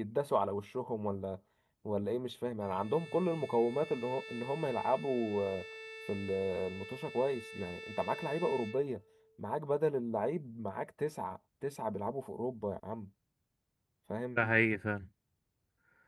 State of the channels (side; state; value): both; identical; correlation 1.00